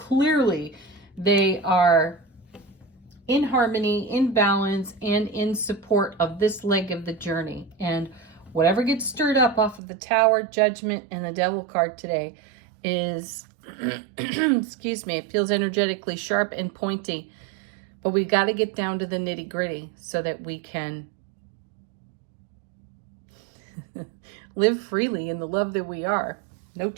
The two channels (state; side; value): drops out; left; at 9.8 s